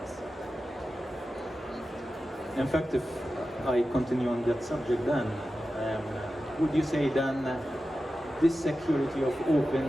In fact, if I continue on that subject then, would you say then this security of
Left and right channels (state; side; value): normal; both; correlation 0.93